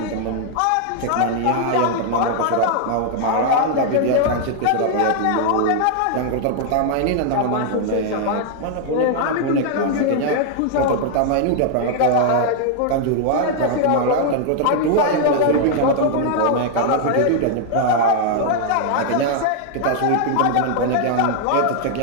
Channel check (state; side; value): different; both; correlation 0.00